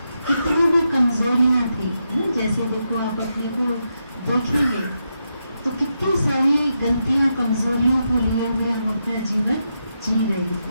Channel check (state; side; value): inverted; both; correlation -0.85